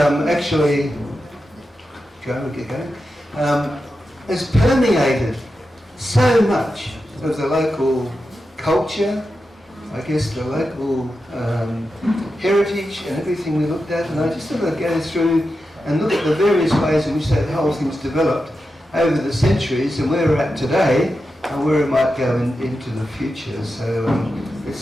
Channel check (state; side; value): normal; both; correlation 0.90